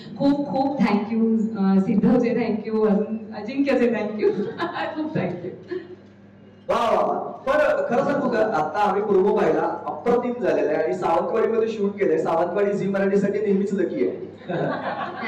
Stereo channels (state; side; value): identical; both; correlation 1.00